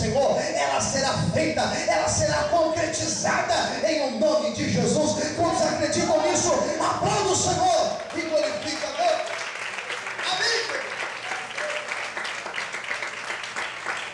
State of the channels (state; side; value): identical; both; correlation 1.00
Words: ela será feita, ela será concretizada em o nome de Jesus. Quantos acreditam nisso? Aplauda o Senhor e glorifica a Deus. Amém.